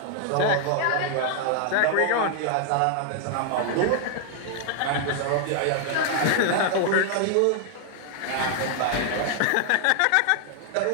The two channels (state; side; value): different; both; correlation 0.00